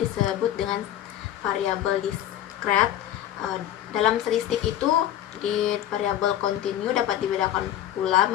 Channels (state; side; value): quieter; right; 11.7 dB